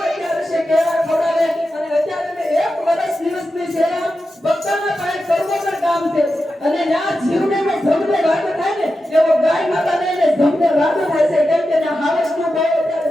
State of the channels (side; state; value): both; normal; correlation 0.90